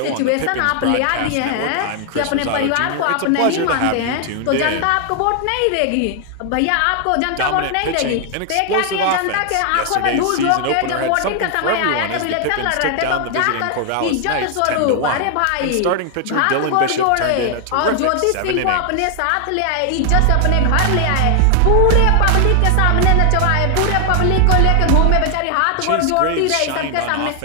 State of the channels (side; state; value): both; different; correlation 0.00